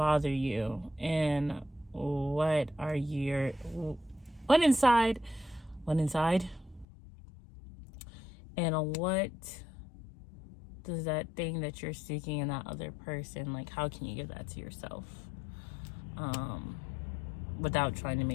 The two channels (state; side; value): drops out; right; at 6.9 s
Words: you, and what inside, and what does that thing that you're seeking in that other person, like, how can you give that to yourself, without trying to